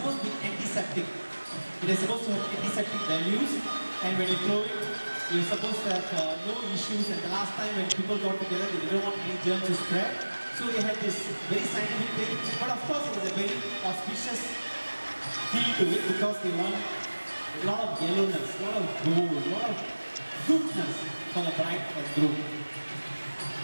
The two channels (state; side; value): inverted; both; correlation -1.00